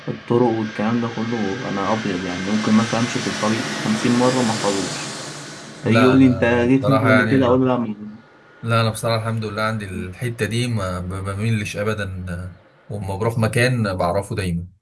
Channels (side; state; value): both; identical; correlation 1.00